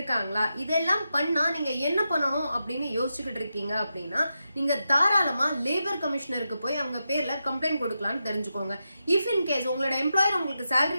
இதெல்லாம் பண்ணா நீங்க என்ன பண்ணணும் அப்படின்னு யோசிச்சுக்கிட்டு இருக்கீங்க அப்படின்னா நீங்க தாராளமா லேபர் கமிஷனருக்கு போய் அவங்க பேர்ல கம்ப்ளைண்ட் கொடுக்கலாம்னு தெரிஞ்சுக்கோங்க. இஃப் இன் கேஸ் உங்களோட எம்ப்ளாயர் உங்களுக்கு salary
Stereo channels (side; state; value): both; inverted; correlation -0.88